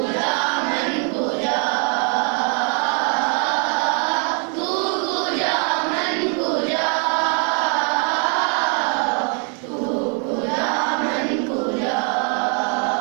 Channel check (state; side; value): quieter; left; 39.6 dB